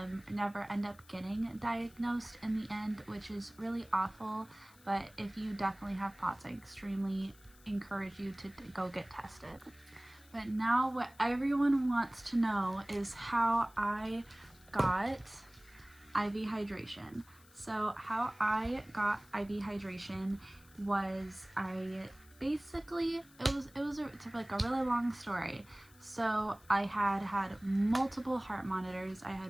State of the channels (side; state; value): left; noise; hiss, 26 dB below the sound